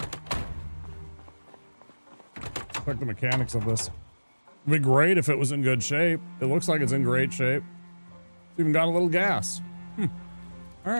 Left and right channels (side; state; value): both; inverted; correlation -1.00